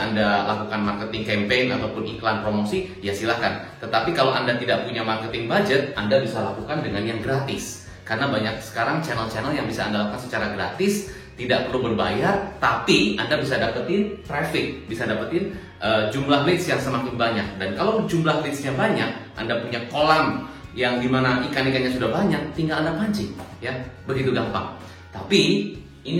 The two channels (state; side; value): identical; both; correlation 1.00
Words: Anda lakukan marketing campaign ataupun iklan promosi, ya silahkan. Tetapi kalau Anda tidak punya marketing budget, Anda bisa lakukan dengan yang gratis. Karena banyak sekarang channel-channel yang bisa Anda lakukan secara gratis, tidak perlu berbayar, tapi Anda bisa dapetin traffic, bisa dapetin jumlah leads yang semakin banyak. Dan kalau jumlah leadsnya banyak, Anda punya kolam yang dimana ikan-ikannya sudah banyak, tinggal Anda pancing, ya, begitu gampang. Tapi